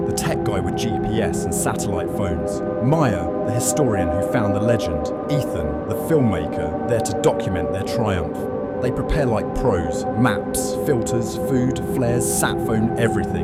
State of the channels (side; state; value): both; identical; correlation 1.00